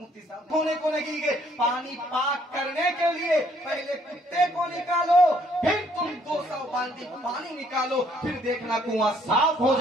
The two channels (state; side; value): normal; both; correlation 0.65